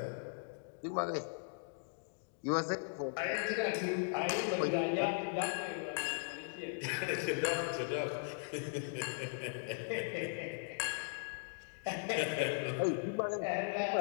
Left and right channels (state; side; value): silent; right; digital silence